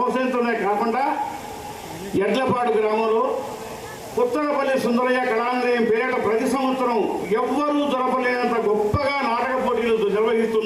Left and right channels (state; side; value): identical; both; correlation 1.00